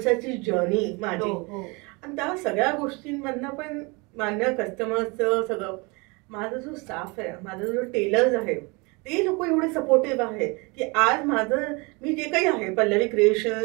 जर्नी माझी, आणि त्या सगळ्या गोष्टींमधनं पण माझ्या कस्टमर्सचं सगळं, माझा जो स्टाफ आहे, माझा जो टेलर्स आहे, ते लोक एवढे सपोर्टिव्ह आहे की आज माझं मी जे काही आहे पल्लवी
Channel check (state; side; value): quieter; left; 28.1 dB